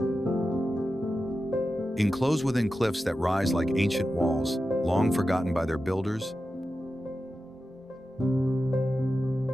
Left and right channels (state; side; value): normal; both; correlation 0.92